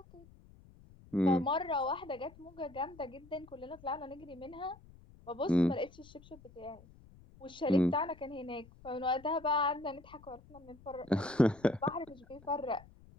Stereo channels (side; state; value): left; noise; rumble, 23 dB below the sound